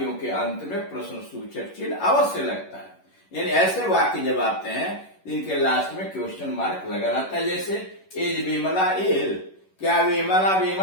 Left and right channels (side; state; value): right; late; 11 ms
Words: के अंत में प्रश्न सूचक चिन्ह अवश्य लगता है। यानी ऐसे वाक्य जब आते हैं इनके लास्ट में क्वेश्चन मार्क लगा रहता है। जैसे इज विमला इल, क्या विमला